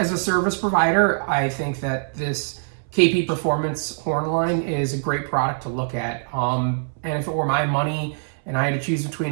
a service provider, I think that this KP Performance horn line is a great product to look at. And if it were my money and I had to choose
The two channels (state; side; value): silent; left; 63 dB below the other